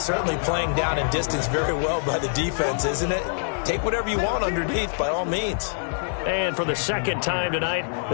certainly playing down in distance very well by the defense, isn't it? Take whatever you want underneath by all means. And for the second time tonight,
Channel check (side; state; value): right; silent; digital silence